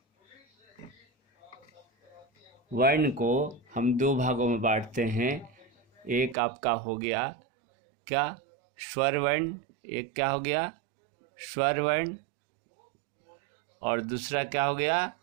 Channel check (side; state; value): left; drops out; at 6.4 s